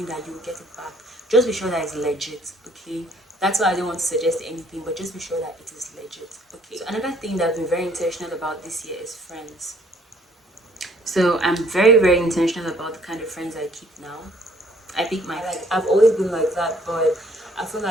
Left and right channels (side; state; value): both; normal; correlation 0.61